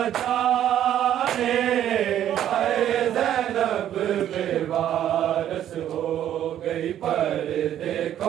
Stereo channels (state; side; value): quieter; left; 11.0 dB